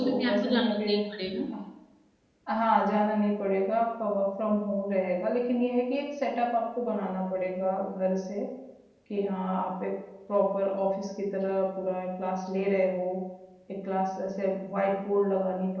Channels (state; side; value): identical; both; correlation 1.00